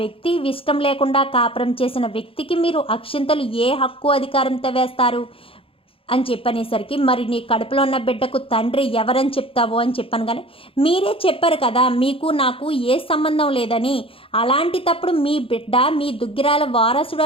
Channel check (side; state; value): right; late; 0.27 ms